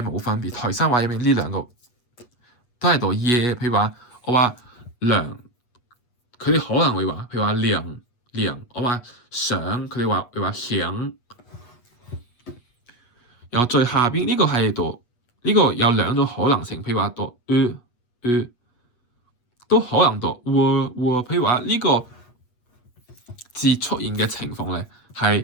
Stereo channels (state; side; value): late; right; 8.3 ms